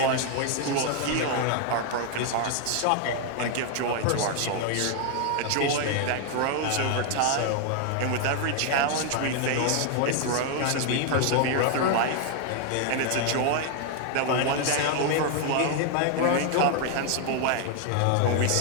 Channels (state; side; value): different; both; correlation 0.00